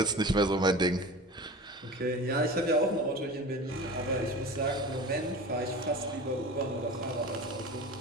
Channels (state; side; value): normal; both; correlation 0.34